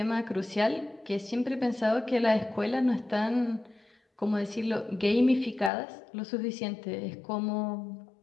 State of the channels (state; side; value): drops out; right; at 5.7 s